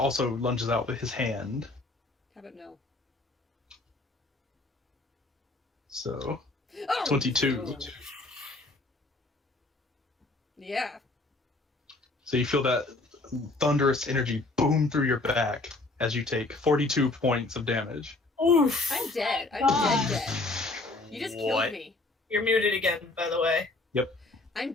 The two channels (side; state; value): right; quieter; 3.1 dB